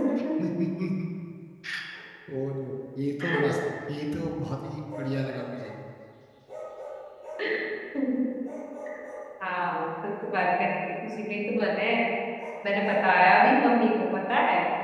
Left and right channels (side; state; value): both; identical; correlation 1.00